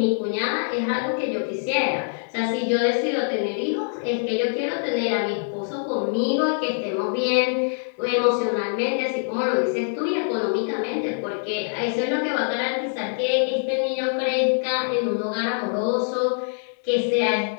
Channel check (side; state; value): right; silent; digital silence